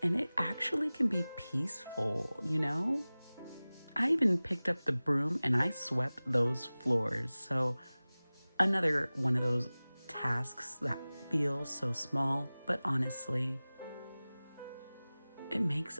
and it actually can be peaceful, you know? I even picked up the broom and I swept those floors. So, another one of those tasks that feels so small, but honestly, it makes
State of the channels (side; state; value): both; inverted; correlation -0.99